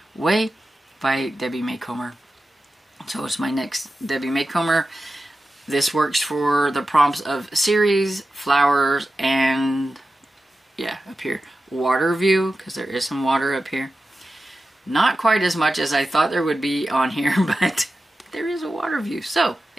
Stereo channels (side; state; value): both; normal; correlation 0.93